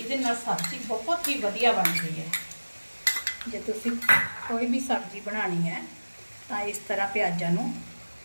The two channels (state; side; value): inverted; both; correlation -1.00